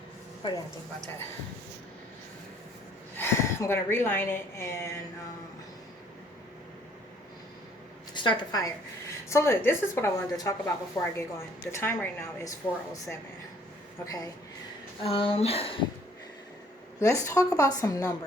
what do you think about that? I'm going to reline it and start the fire. So look, this is what I wanted to talk about before I get going. The time right now is 4:07. Okay. Let's talk about some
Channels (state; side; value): normal; both; correlation 0.61